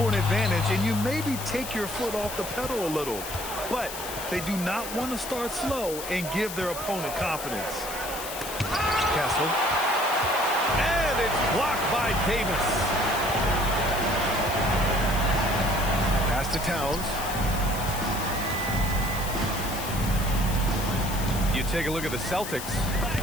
court advantage and you maybe take your foot off the pedal a little. But they do not want to start slow and give their opponent confidence. Castle. And it's blocked by Davis. Pass to Towns. You take a look at the Celtics.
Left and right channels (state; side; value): noise; left; hiss, 9 dB below the sound